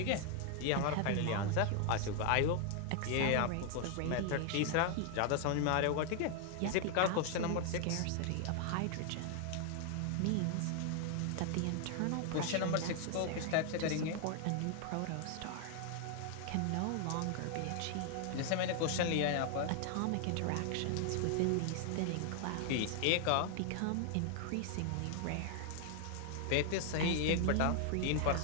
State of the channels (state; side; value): different; both; correlation 0.00